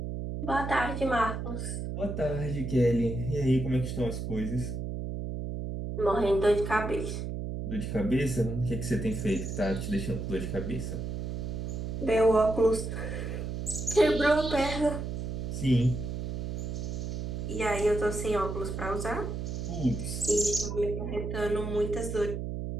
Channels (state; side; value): noise; right; hum, 4 dB below the sound